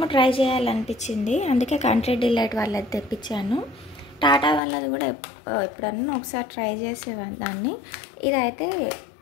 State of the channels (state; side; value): drops out; right; at 4.6 s